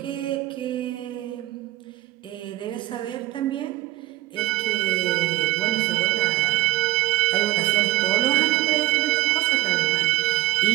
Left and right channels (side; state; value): left; quieter; 17.2 dB